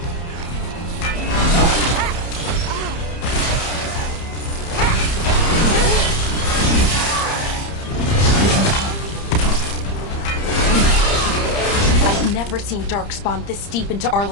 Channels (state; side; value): late; right; 30 ms